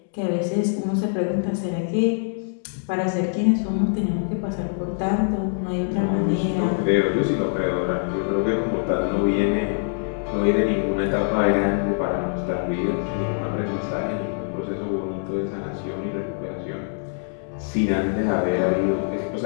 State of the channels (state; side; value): silent; right; 63 dB below the other